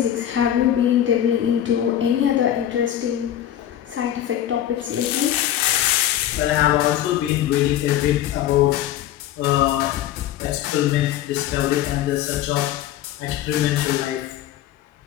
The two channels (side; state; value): right; quieter; 11.8 dB